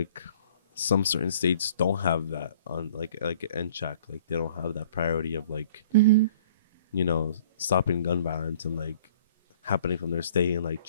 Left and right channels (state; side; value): inverted; both; correlation -0.53